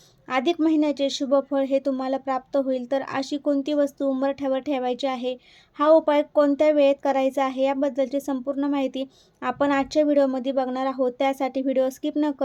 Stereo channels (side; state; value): both; identical; correlation 1.00